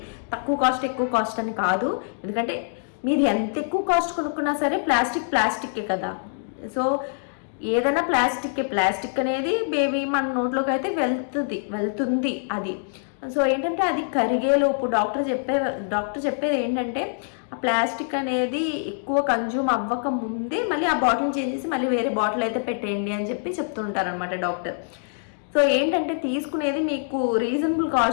తక్కువ కాస్ట్ ఎక్కువ కాస్ట్ అని కాదు, ఎందుకంటే మీరు ఎంత ఎక్కువ కాస్ట్ కొనుక్కున్నా సరే ప్లాస్టిక్కే కదా. సో ఏదైనా ప్లాస్టిక్ అనేది బేబీ మన నోట్లోకి అయితే వెళ్తుంది అది. సో ఏంటంటే అది కరిగేలోపు డాక్టర్ చెప్పేది ఏంటంటే ఆ ప్లాస్టిక్ అనేది ఎక్కువ కన్జ్యూమ్ అవ్వక ముందే మళ్ళీ ఆ బాటిల్ చేంజ్ చేసి మళ్ళీ వేరే బాటిల్ అయితే పెట్టేయండి అని చెప్పి చెప్తుంటారనమాట డాక్టర్. సో ఏంటంటే తీసుకునేది మీకు రీజనబుల్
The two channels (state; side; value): silent; right; digital silence